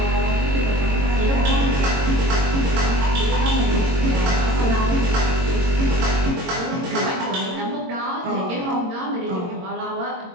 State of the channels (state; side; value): late; left; 22 ms